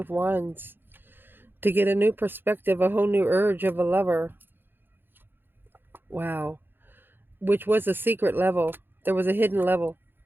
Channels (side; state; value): left; late; 0.099 ms